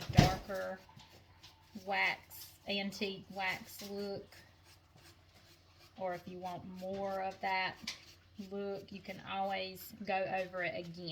darker wax, antique wax look. Or if you want more of that look, you can always go over it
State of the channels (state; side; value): identical; both; correlation 1.00